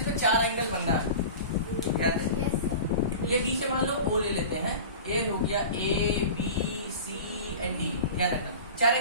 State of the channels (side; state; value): both; inverted; correlation -0.35